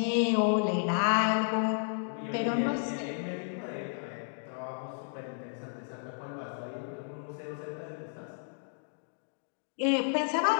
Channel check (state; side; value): silent; right; digital silence